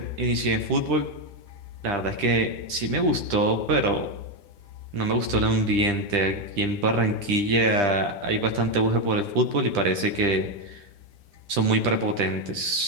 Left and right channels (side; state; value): left; late; 10 ms